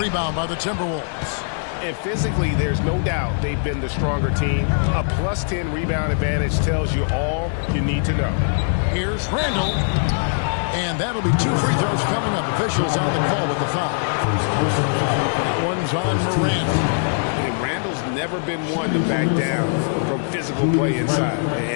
by the Timberwolves. And physically, there's no doubt they've been the stronger team. A +10 rebound advantage tells you all you need to know. Here's Randall. And that'll be 2 free throws coming up. Officials on the call with the foul. That one's on Morant. And Randall's never been one to back down from physical play inside.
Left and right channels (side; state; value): right; silent; 60 dB below the other